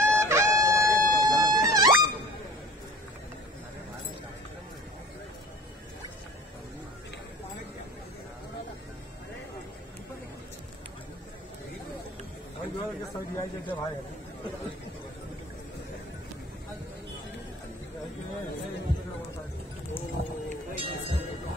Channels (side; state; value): both; normal; correlation 0.44